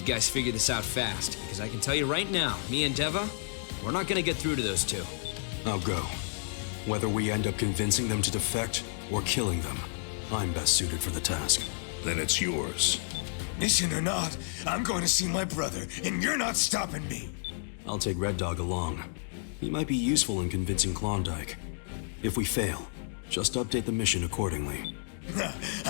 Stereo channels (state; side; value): silent; right; digital silence